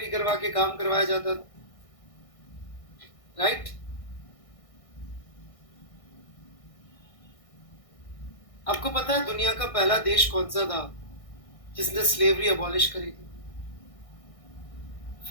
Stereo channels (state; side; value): late; right; 1.6 ms